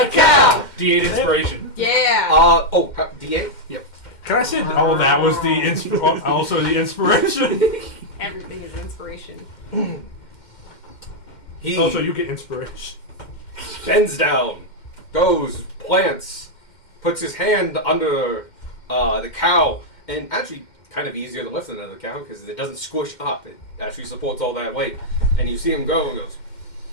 cow. D8 inspiration. Yeah. D8? Can I say? Oh, that was the also the inspiration. Everything is inspiration. He Oh, so you get inspiration. bends down, goes, plants, puts his hand under the cow, and actually kind of easier to lift than another cow because it doesn't squish up. It actually supports all that weight. And you see him go and goes,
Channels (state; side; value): late; right; 2.1 ms